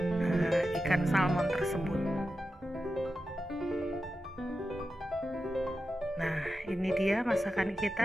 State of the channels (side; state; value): both; normal; correlation 0.91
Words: ikan salmon tersebut. Nah, ini dia masakan